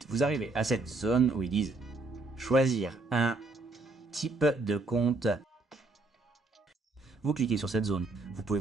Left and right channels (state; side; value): quieter; left; 3.3 dB